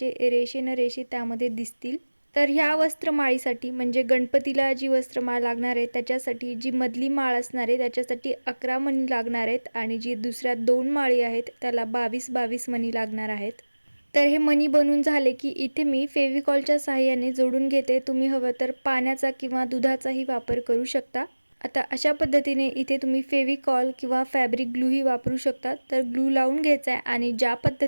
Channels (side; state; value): both; inverted; correlation -1.00